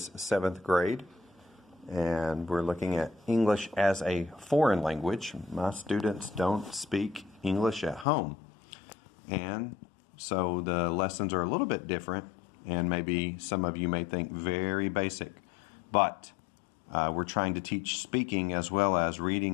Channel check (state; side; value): drops out; right; at 8.1 s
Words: 7th grade, and we're looking at English as a foreign language. My students don't speak English at home, and so the lessons are a little bit different, and maybe some of you may think very basic, but we're trying to teach speaking as well as